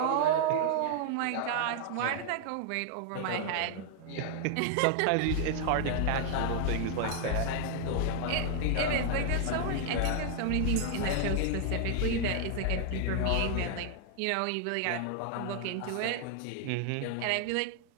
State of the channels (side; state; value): both; different; correlation 0.00